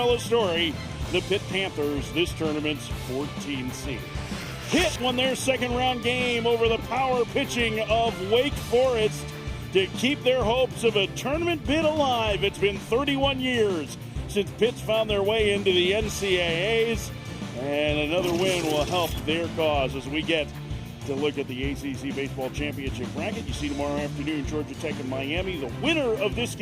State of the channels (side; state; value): both; identical; correlation 1.00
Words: story, the Pitt Panthers, this tournament's 14th seed. Pitt won their second round game over the power pitching of Wake Forest to keep their hopes of a tournament bid alive. It's been 31 years since Pitt's found their way into the NCAAs, and another win will help their cause as we get to look at the ACC Baseball Championship bracket. You see tomorrow afternoon, Georgia Tech and Miami. The winner of this